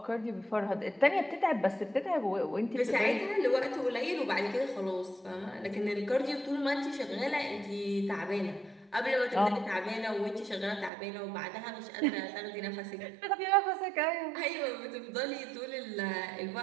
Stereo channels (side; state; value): left; drops out; at 10.9 s